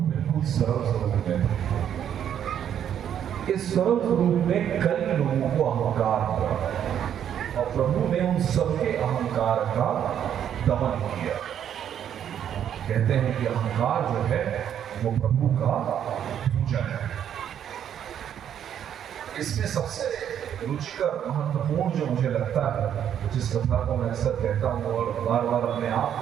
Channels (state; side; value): quieter; left; 9.5 dB